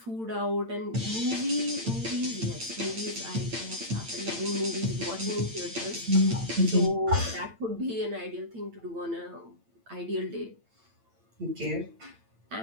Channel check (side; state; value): left; late; 8.8 ms